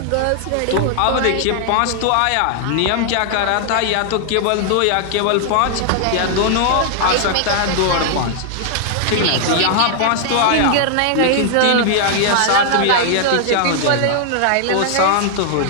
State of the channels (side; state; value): both; different; correlation 0.00